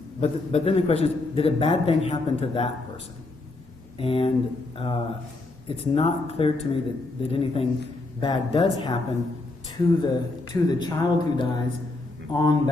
then the question is, did a bad thing happen to that person? And it's not clear to me that anything bad does happen to the child who dies on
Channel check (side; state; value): right; quieter; 3.0 dB